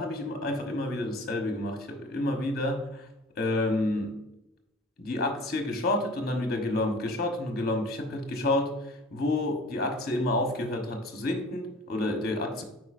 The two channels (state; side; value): normal; both; correlation 0.45